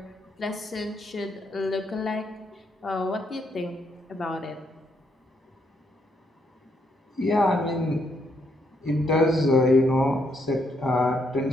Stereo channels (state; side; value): normal; both; correlation 0.75